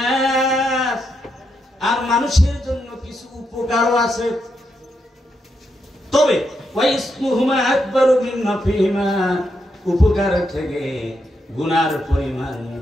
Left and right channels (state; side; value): normal; both; correlation 0.82